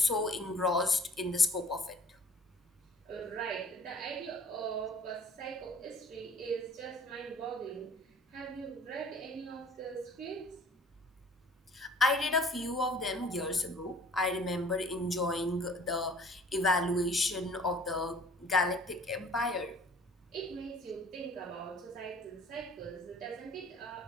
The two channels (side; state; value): both; normal; correlation 0.50